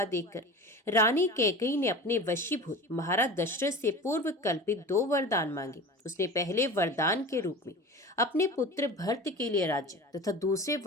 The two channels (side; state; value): both; normal; correlation 0.34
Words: देखकर रानी कैकेयी ने अपने वशीभूत महाराज दशरथ से पूर्व कल्पित 2 वरदान मांगे। उसने पहले वरदान के रूप में अपने पुत्र भरत के लिए राज्य तथा दूसरे